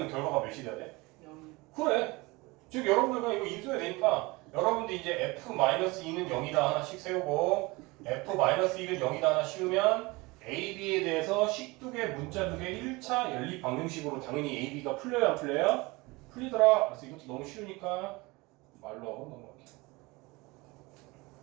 결과가 몇이 돼야 돼? 0. 그래. 즉 여러분들 그냥 이거 인수해야 되니까 여러분들 이제 f-2는 0이다 하나씩 세우고 f-1은 0이다 하나 씌우면 a, b에 대해서 식두개, 문자두개 1차 연립 방정식으로 당연히 a, b가 풀려요 안 풀려요? 풀리더라. 그래서 이것도 너무 쉬우니까 말로 하고 넘어갈게요.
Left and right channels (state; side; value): quieter; left; 23.6 dB